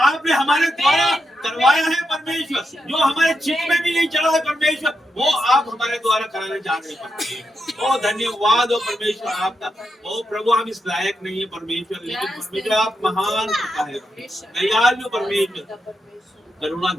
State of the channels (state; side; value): normal; both; correlation 0.85